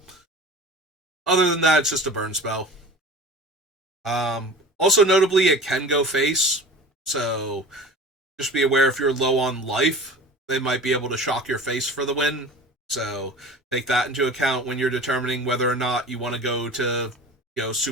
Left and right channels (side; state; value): both; normal; correlation 0.39